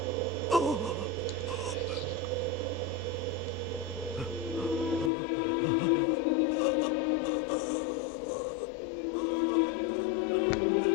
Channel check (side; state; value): right; drops out; at 5.1 s